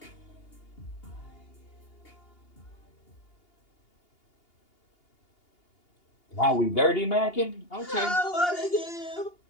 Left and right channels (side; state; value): right; late; 2.8 ms